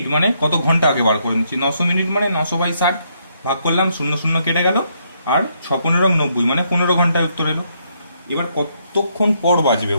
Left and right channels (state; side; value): inverted; both; correlation -0.74